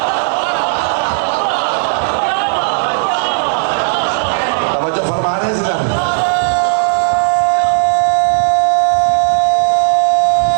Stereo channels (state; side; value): silent; left; digital silence